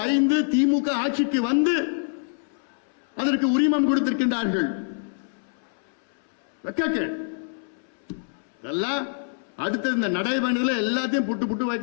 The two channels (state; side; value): silent; right; 62 dB below the other